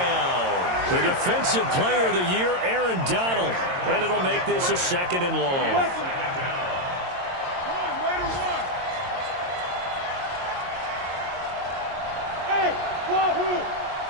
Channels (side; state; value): left; late; 22 ms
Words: The Defensive Player of the Year, Aaron Donald. And it'll make this a 2nd and long. Hey, Wahoo!